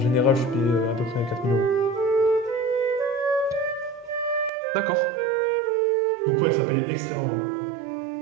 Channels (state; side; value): drops out; left; at 4.5 s